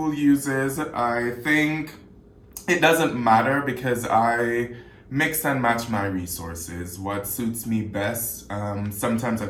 uses. I think it doesn't matter because I mix and match my resources, what suits me best. Sometimes I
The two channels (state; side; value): identical; both; correlation 1.00